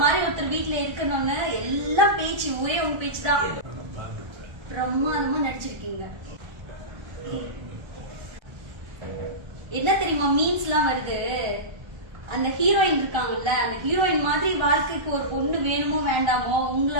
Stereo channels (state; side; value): late; left; 1.3 ms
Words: மாதிரி ஒருத்தர் வீட்டுல இருக்கணும்னு எல்லாம் பேச்சு ஒரே உங்க பேச்சு தான். பிரம்மாதமா நடிச்சிருக்கீங்க. என்ன தெரியுமா மீன்ஸ் எல்லாம் வருது, அந்த ஹீரோயின் இருக்காங்கல்ல, அந்த ஹீரோயின் மாதிரி வாழ்க்கைக்கு ஒரு பொண்ணு வேணுமோ வேண்டாமோ